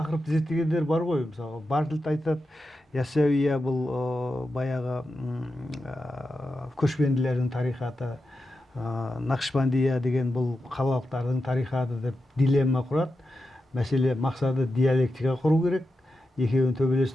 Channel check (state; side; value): normal; both; correlation 0.89